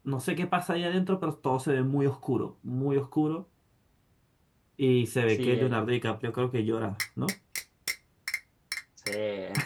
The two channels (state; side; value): identical; both; correlation 1.00